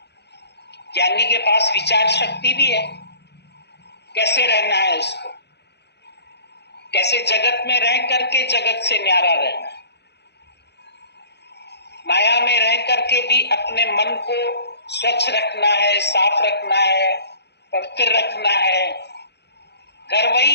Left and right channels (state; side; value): late; right; 0.49 ms